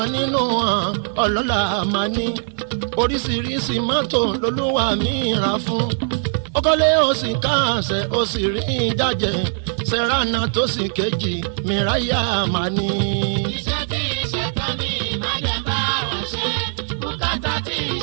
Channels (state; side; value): silent; left; digital silence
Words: nínú wọn ọlọ́lá máa ní oríṣiríṣi mọ́tò lolúwa mi rà fún. ó kọ́lé ó sì káàsẹ̀ ó sì rí jájẹ sẹ́ránà tó sì kejì mìráyà máa ní. iṣẹ́ tí iṣẹ́ tán mi má jẹ́ bá wọn ṣe bùkátà tí